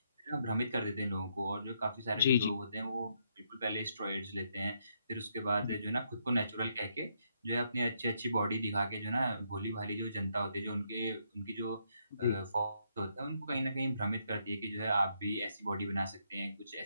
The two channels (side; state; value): both; inverted; correlation -0.75